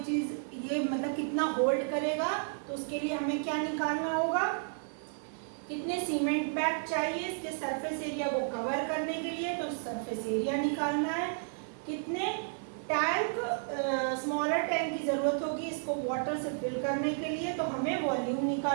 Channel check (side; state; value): left; silent; 56 dB below the other